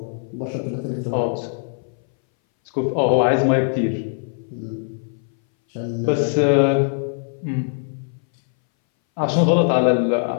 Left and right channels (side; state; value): right; silent; 61 dB below the other